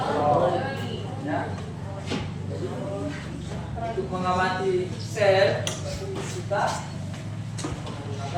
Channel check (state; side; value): identical; both; correlation 1.00